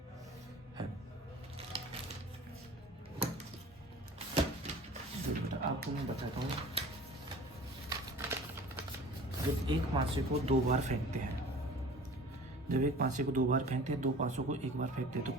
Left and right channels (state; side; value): normal; both; correlation 0.43